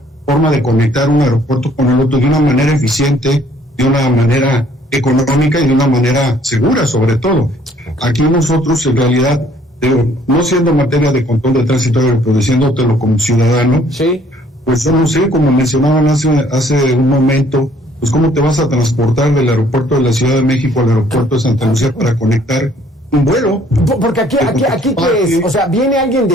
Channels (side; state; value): both; normal; correlation 0.61